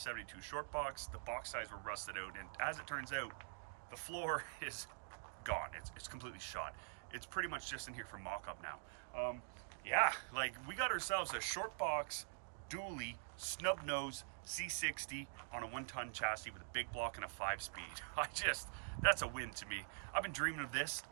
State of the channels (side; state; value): left; silent; digital silence